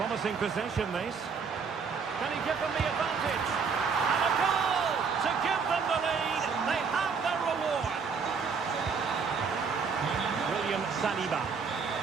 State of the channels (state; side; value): quieter; left; 5.6 dB